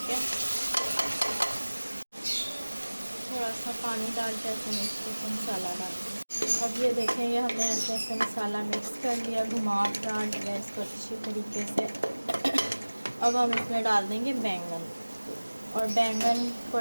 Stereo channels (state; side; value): inverted; both; correlation -1.00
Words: है, थोड़ा सा पानी डाल के ऐसे मिक्स करके मसाला डाल देंगे। अब ये देखें, ये हमने ऐसे ऐसे मसाला मिक्स कर लिया, घुमा फिरा लिया इसको अच्छी तरीके से। अब हम इसमें डाल देंगे बैंगन, और बैंगन को